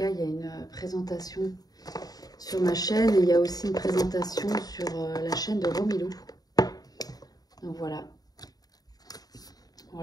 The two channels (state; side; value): late; right; 0.18 ms